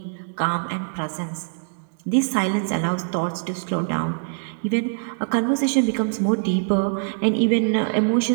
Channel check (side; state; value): left; silent; digital silence